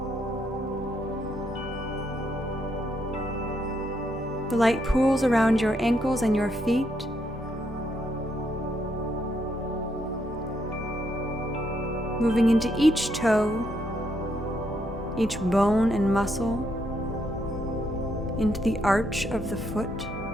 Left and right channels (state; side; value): normal; both; correlation 0.76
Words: The light pools around your ankles and your feet, moving into each toe, each bone and muscle, into the arch of the foot.